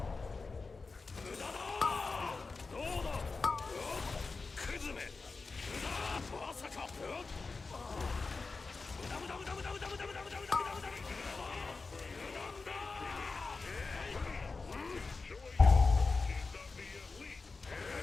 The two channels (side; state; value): right; quieter; 4.1 dB